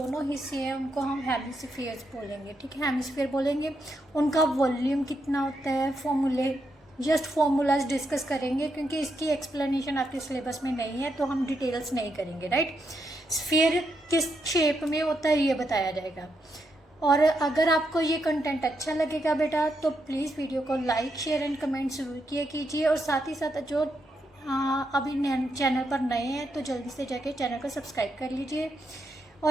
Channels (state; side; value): normal; both; correlation 0.81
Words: हिस्से हैं उनको हम हेमिस्फीयर्स बोलेंगे, ठीक है, हेमिस्फीयर बोलेंगे। उनका वॉल्यूम कितना होता है, फॉर्मूलाज डिस्कस करेंगे, क्योंकि इसकी एक्सप्लेनेशन आपके सिलेबस में नहीं है तो हम डिटेल्स नहीं करेंगे, राइट। स्फीयर किस शेप में होता है ये बताया जाएगा। और अगर आपको ये कंटेंट अच्छा लगेगा बेटा तो प्लीज़ वीडियो को लाइक शेयर एंड कमेंट ज़रूर किया कीजिए। और साथ ही साथ जो अभी चैनल पर नए हैं तो जल्दी से जाके चैनल को सब्सक्राइब कर लीजिए,